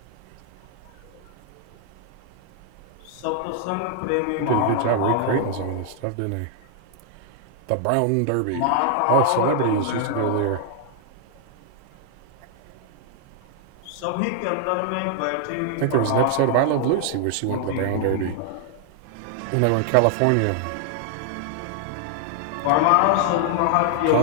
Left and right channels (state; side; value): different; both; correlation 0.00